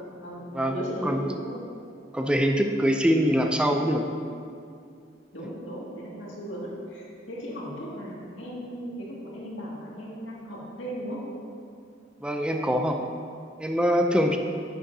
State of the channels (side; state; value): both; normal; correlation 0.75